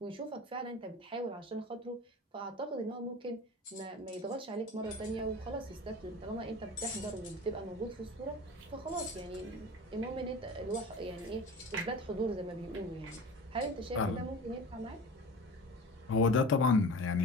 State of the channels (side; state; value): both; normal; correlation 0.35